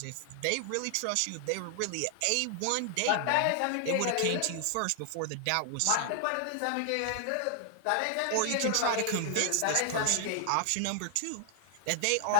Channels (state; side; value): different; both; correlation 0.00